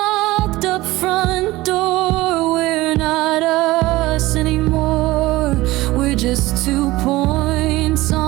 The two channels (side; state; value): left; quieter; 18.7 dB